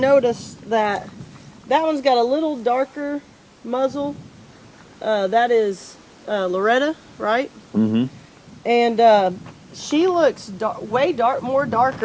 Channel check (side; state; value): both; identical; correlation 1.00